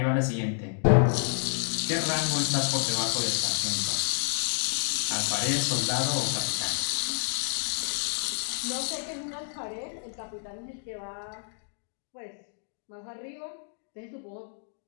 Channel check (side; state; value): right; silent; digital silence